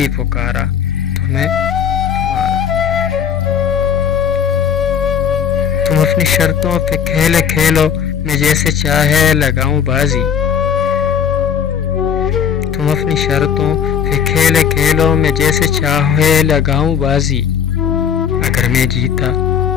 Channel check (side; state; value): right; quieter; 7.8 dB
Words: پکارا تمہیں تمہارا۔ تم اپنی شرطوں پہ کھیلے کھیلو میں جیسے چاہے لگاؤں بازی، تم اپنی شرطوں پہ کھیلے کھیلو میں جیسے چاہے لگاؤں بازی، اگر میں جیتا